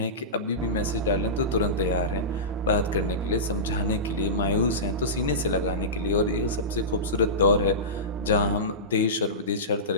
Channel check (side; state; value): both; normal; correlation -0.19